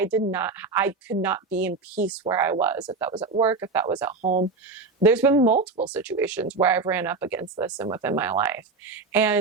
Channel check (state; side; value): quieter; left; 4.0 dB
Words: could not be in peace where I was, if that was at work, if that was at home. There's been multiple situations where I've ran up against this and within my life.